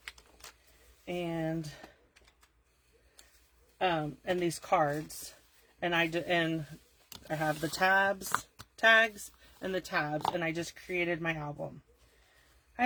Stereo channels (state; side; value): identical; both; correlation 1.00